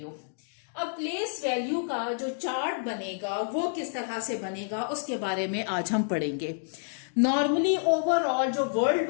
अब प्लेस वैल्यू का जो चार्ट बनेगा वो किस तरह से बनेगा उसके बारे में आज हम पढ़ेंगे। नॉर्मली ओवरऑल जो वर्ल्ड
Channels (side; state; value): right; silent; digital silence